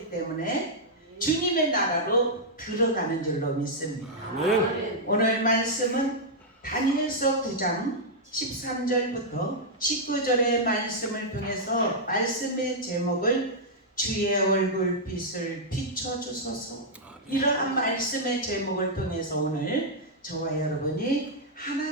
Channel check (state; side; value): normal; both; correlation -0.06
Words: 때문에 주님의 나라로 들어가는 줄로 믿습니다. 아멘. 오늘 말씀은 다니엘서 9장 13절부터 19절의 말씀을 통해서 말씀의 제목을 주의 얼굴빛을 비춰주소서. 이러한 말씀의 제목을 통해서 오늘 저와 여러분이